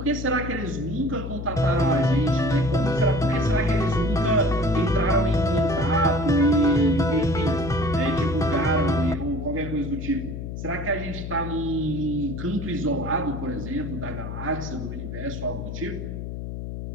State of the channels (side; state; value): left; noise; hum, 7 dB below the sound